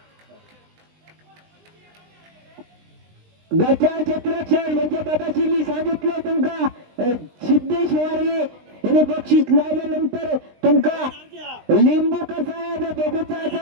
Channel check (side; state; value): left; late; 20 ms